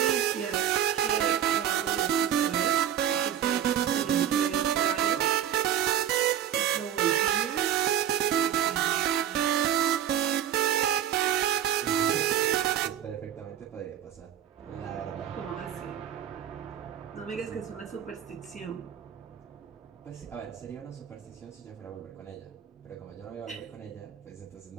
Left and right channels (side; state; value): left; quieter; 10.1 dB